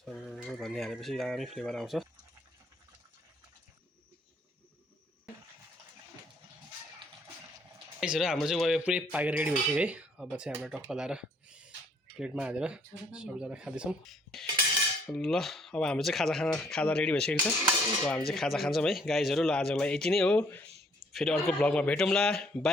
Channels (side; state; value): both; normal; correlation 0.64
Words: धनियाँ हालेपछि दामी फ्लेभर आउँछ। यसरी हाम्रो चाहिँ वाइ पुरै पाकेर रेडी भइसक्यो है। अब चाहिँ हाम्रो टक्क लाएर प्लेटमा हालेर सबैजना खाँदैछौँ। ल अब हाम्रो चाहिँ खाजा रेडी भइसकेको छ। अब हामी चाहिँ खाजा खान्छौँ है गाइजहरू। ल आजको लागि यति नै हो, फेरि अर्को भ्लगमा भेटौँला।